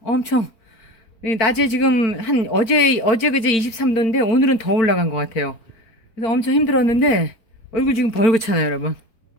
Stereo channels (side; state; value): right; late; 4.4 ms